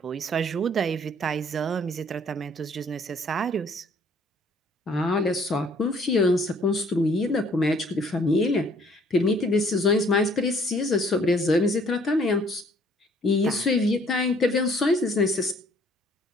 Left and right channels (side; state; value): both; normal; correlation 0.59